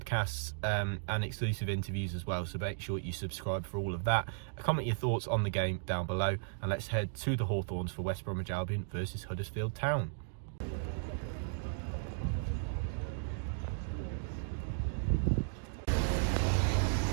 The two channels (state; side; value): silent; left; digital silence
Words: and exclusive interviews as well, so make sure you subscribe for all of that. Comment your thoughts on the game down below, and let's head to the Hawthorns for West Bromwich Albion versus Huddersfield Town.